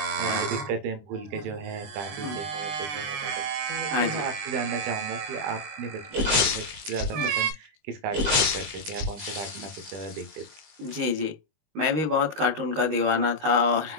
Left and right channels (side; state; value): left; late; 19 ms